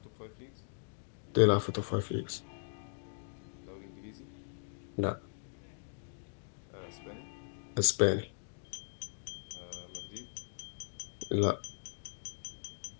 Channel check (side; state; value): right; silent; digital silence